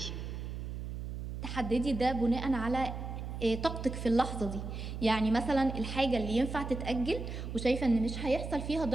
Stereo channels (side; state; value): right; noise; hum, 6 dB below the sound